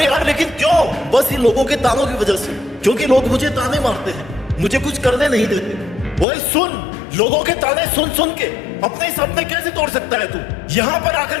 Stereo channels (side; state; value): right; drops out; at 6.2 s